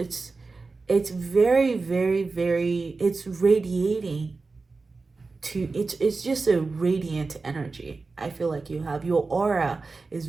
very, very, very, it's radiating to, it's just a radiant energy. I feel like you have, your aura is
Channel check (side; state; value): left; quieter; 4.0 dB